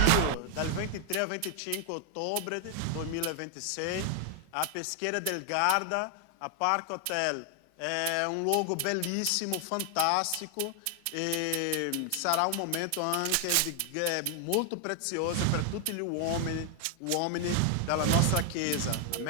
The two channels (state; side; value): different; both; correlation 0.00